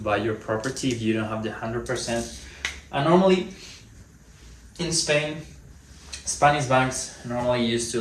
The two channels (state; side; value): identical; both; correlation 1.00